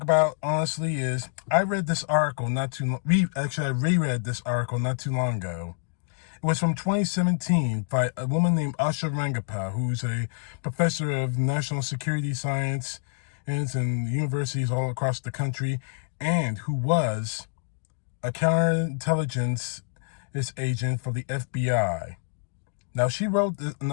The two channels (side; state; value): right; silent; digital silence